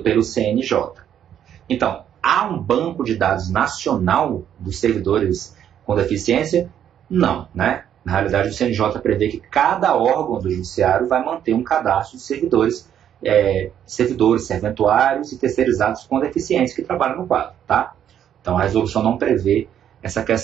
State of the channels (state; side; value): quieter; left; 9.8 dB